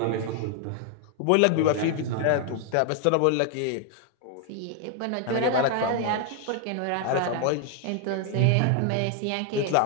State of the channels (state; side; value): different; both; correlation 0.00